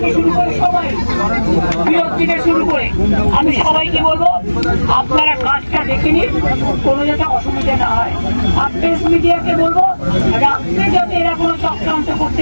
শুরু করে, সবাই বিরোধ থেকে শুরু করে, আমি সবাইকে বলবো আপনারা কাজটা দেখে নিন, কোনো যাতে অসুবিধা না হয়। আর প্রেস মিডিয়াকে বলবো রাত্রে যাতে এরা কোনো চক্রান্ত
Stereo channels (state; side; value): inverted; both; correlation -1.00